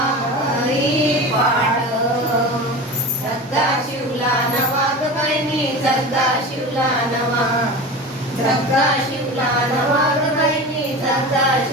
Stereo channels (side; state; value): both; normal; correlation 0.31